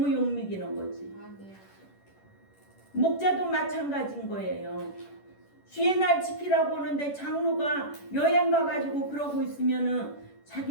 욕먹이는 거지. 목자도 마찬가지인 거예요. 주의 날 지키라고 하는데 장로가 여행 가가지고 그러고 있으면은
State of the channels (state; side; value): late; right; 10 ms